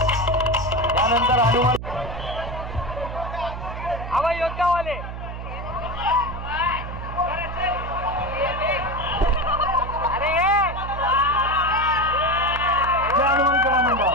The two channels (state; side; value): noise; right; hum, 8 dB below the sound